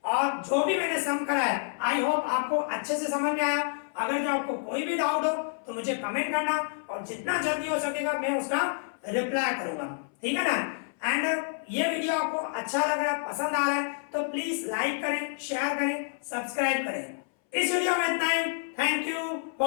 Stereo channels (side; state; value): right; silent; 59 dB below the other